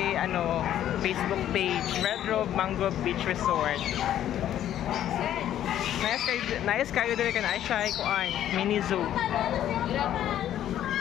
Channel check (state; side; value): quieter; right; 11.4 dB